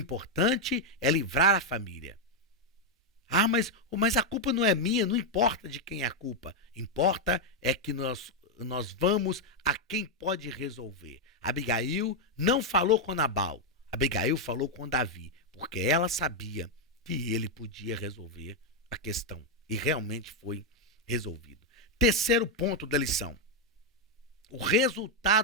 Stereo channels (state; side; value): normal; both; correlation 0.01